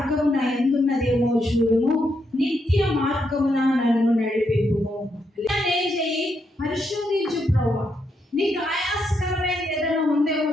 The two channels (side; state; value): both; normal; correlation 0.79